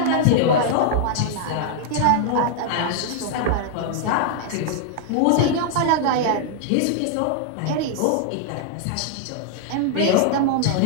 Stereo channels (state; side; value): different; both; correlation -0.01